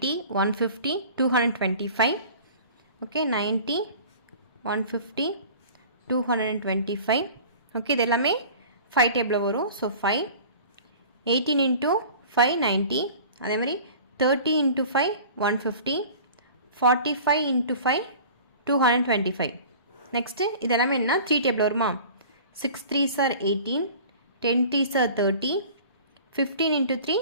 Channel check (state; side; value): inverted; both; correlation -0.43